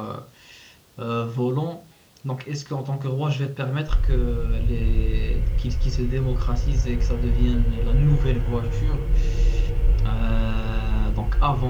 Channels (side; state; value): both; identical; correlation 1.00